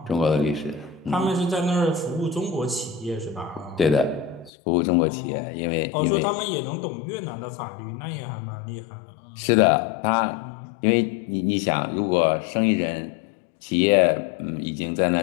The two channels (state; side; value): drops out; right; at 4.5 s